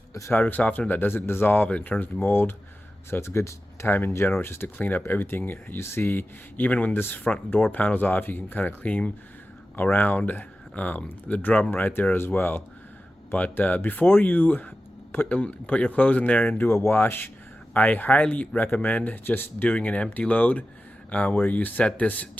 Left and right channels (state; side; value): normal; both; correlation 0.94